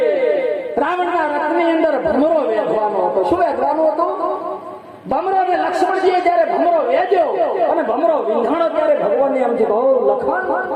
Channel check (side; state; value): both; identical; correlation 1.00